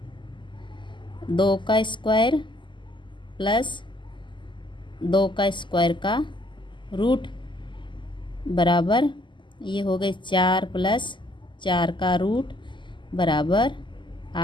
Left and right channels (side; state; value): right; late; 0.23 ms